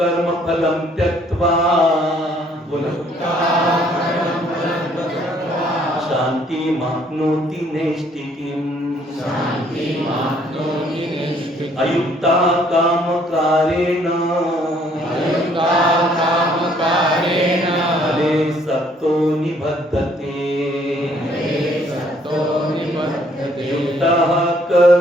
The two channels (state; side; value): normal; both; correlation 0.63